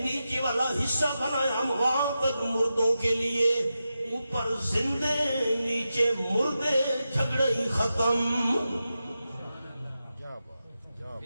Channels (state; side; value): inverted; both; correlation -0.90